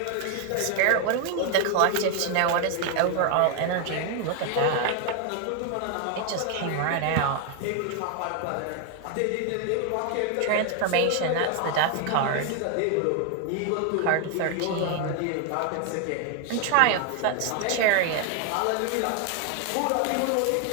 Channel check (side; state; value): both; different; correlation 0.01